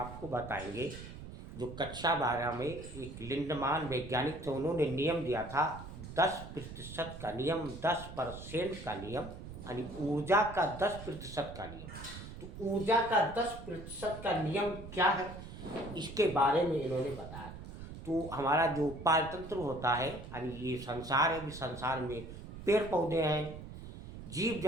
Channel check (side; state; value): right; noise; rumble, 12 dB below the sound